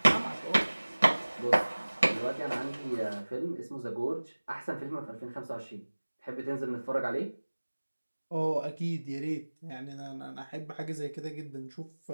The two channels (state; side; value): inverted; both; correlation -1.00